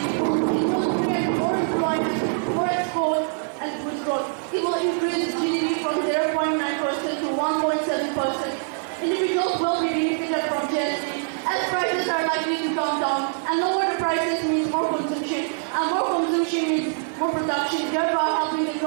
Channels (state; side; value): silent; left; digital silence